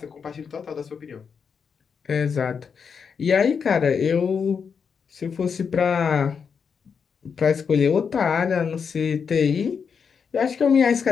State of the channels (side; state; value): right; quieter; 6.3 dB